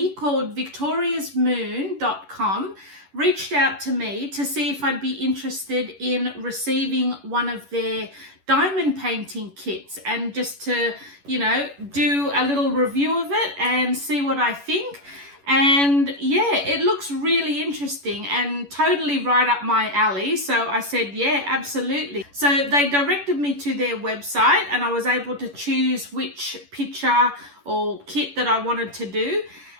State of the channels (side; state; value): left; late; 11 ms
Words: called victoriasmoon.com reached out to me to see if I'd be interested in receiving one of their diamond painting kits and just to, do a little review of it and see what I think. And yeah, it looks really interesting and totally right up my alley. So I said, yeah, absolutely. So they directed me to their website and I was able to choose which picture or kit that I wanted to do.